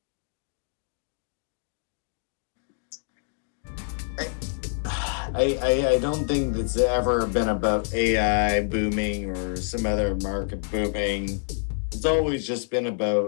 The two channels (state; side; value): silent; right; digital silence